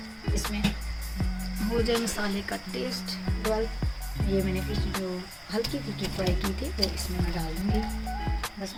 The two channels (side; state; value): both; identical; correlation 1.00